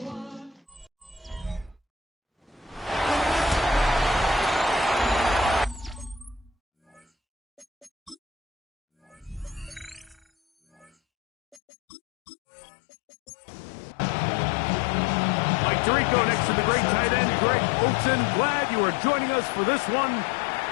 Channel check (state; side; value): drops out; right; at 11.6 s